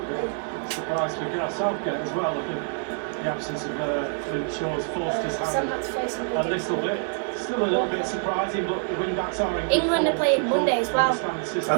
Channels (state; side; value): silent; left; 58 dB below the other